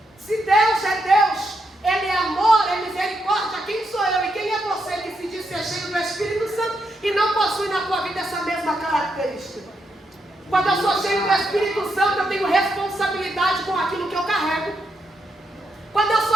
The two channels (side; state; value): both; normal; correlation 0.81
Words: se Deus é Deus, Ele é amor, é misericórdia, quem sou eu e quem é você que se diz ser cheio do Espírito Santo e não possui na tua vida essa mesma característica? Quando eu sou cheio do Espírito Santo, eu tenho responsabilidade com aquilo que eu carrego. Quando eu